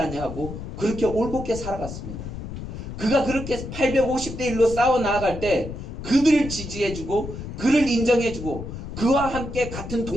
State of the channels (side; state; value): left; noise; rumble, 9 dB below the sound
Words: 그렇게 올곧게 살아갔습니다. 그가 그렇게 850대 1로 싸워 나아갈 때 그들을 지지해주고 그를 인정해주고 그와 함께 같은